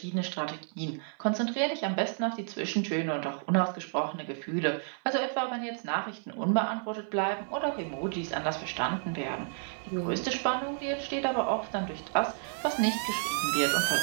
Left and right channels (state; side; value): silent; left; 57 dB below the other